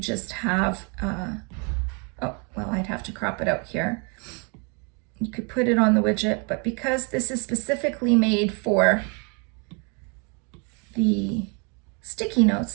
have, oh, well, I'd have to crop it out here. You could put it on the widget, but because this is specifically made for the sticky notes,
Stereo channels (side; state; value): left; quieter; 34.5 dB